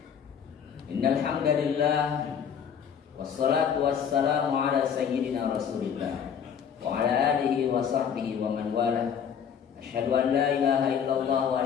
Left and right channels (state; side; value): quieter; right; 7.7 dB